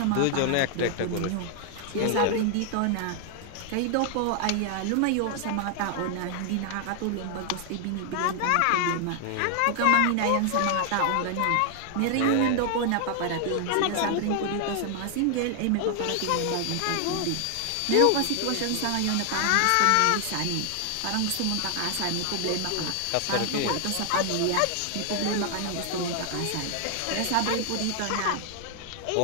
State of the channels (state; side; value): different; both; correlation 0.00